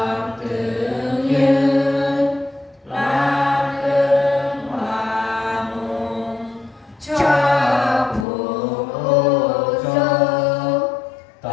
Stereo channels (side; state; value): right; drops out; at 8.2 s